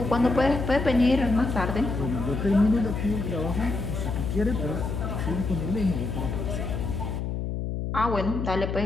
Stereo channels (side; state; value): left; noise; hum, 3 dB below the sound